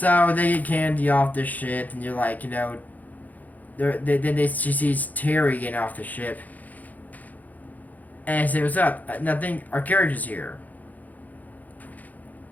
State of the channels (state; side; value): late; right; 0.080 ms